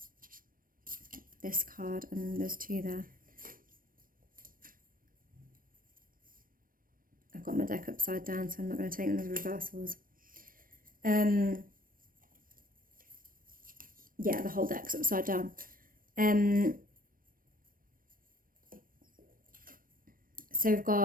This card, and there's two there. I've got my deck upside down, so I'm not going to take them as reversals. Yeah, the whole deck's upside down. So we've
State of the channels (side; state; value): left; late; 0.41 ms